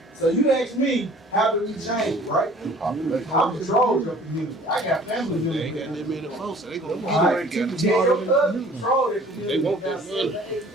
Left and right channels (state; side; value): normal; both; correlation 0.51